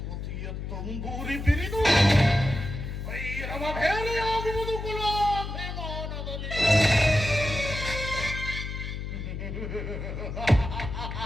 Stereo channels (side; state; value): left; noise; hum, 6 dB below the sound